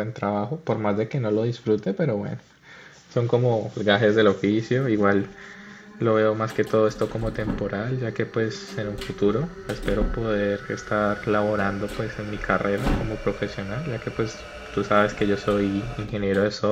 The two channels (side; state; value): both; identical; correlation 1.00